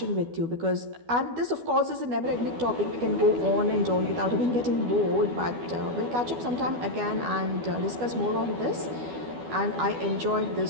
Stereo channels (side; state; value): left; late; 12 ms